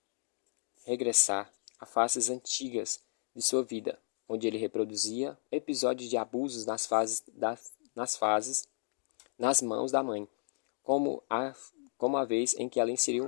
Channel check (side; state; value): right; silent; digital silence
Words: a fases antigas de sua vida, onde ele reproduzia episódios de abusos nas mãos da mãe, como a vez em que ela inseriu